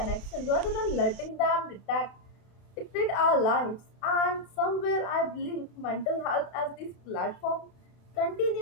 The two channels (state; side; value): late; right; 32 ms